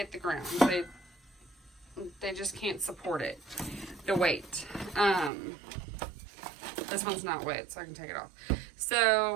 the ground. They just can't support it, the weight. This one's not wet, so I can take it off.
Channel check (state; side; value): drops out; left; at 5.3 s